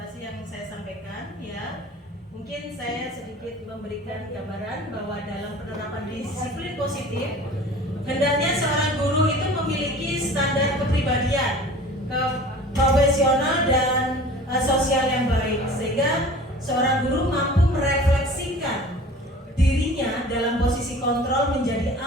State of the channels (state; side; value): normal; both; correlation 0.43